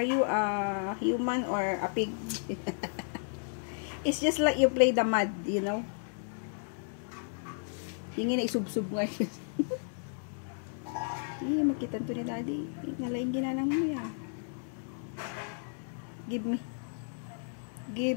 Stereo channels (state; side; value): silent; right; 56 dB below the other